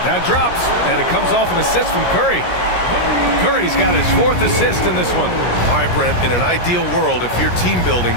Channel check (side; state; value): right; late; 17 ms